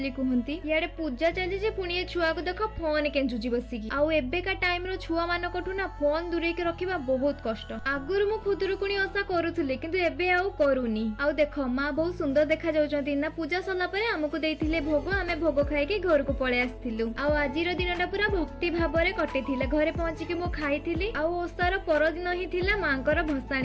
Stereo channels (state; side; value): identical; both; correlation 1.00